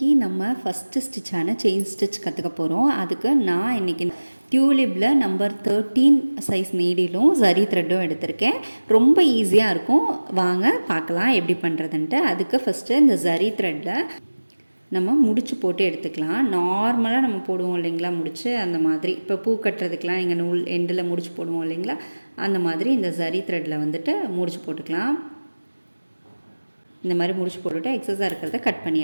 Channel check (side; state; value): both; inverted; correlation -1.00